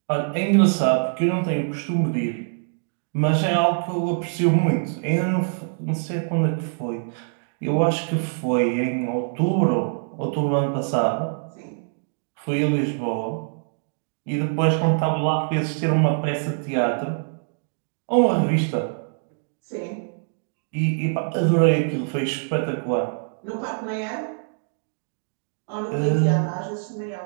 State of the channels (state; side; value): silent; left; digital silence